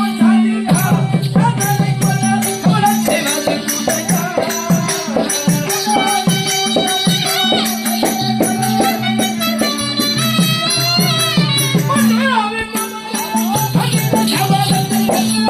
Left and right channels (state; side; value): identical; both; correlation 1.00